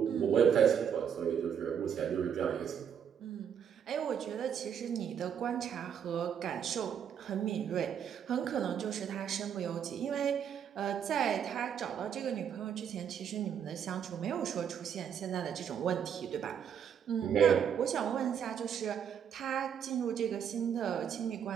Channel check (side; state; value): left; quieter; 8.2 dB